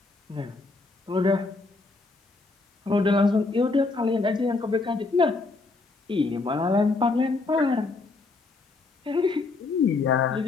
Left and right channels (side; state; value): right; quieter; 3.7 dB